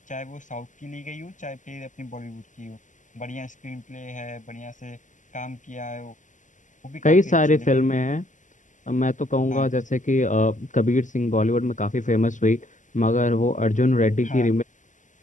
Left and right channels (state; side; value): late; right; 0.37 ms